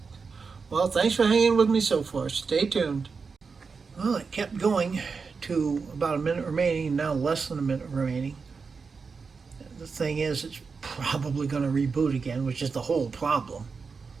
Well, thanks for hanging with me so far. Stay tuned. Well, it kept going to about a minute remaining, now less than a minute remaining. The thing is, it's probably going to reboot again, which is the whole problem.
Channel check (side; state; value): left; quieter; 5.0 dB